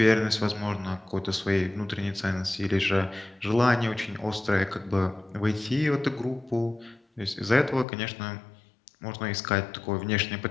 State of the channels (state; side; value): drops out; right; at 7.9 s